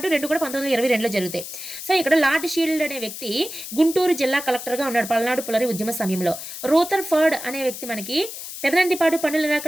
2 కూడా 1922లో జరుగుతాయి. సో ఇక్కడ లార్డ్ షీల్డ్ అనే వ్యక్తి గుంటూరు జిల్లా కలెక్టర్గా ఉన్నాడు పల్నాడు పుల్లరి ఉద్యమ సమయంలో. రోథర్ఫర్డ్ అనే వ్యక్తి మనకి పెదనందిపాడు పన్నుల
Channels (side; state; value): left; noise; hiss, 10 dB below the sound